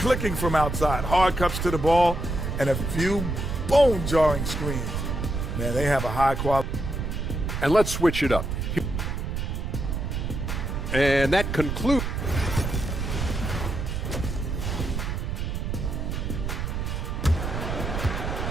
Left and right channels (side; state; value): right; noise; rumble, 3 dB below the sound